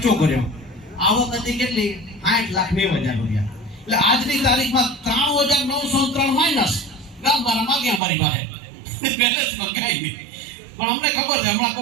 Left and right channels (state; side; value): drops out; left; at 8.0 s